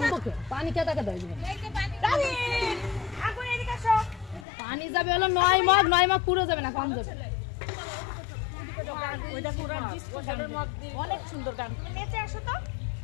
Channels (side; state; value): right; drops out; at 4.5 s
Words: पानी क्या तक पानी যাবে হলো 9 মগ পুরো যাবে না কম যাবে ওইটা পুরো ডিসপোজালের মগ অনেক সুন্দর গান নেচে আসো তো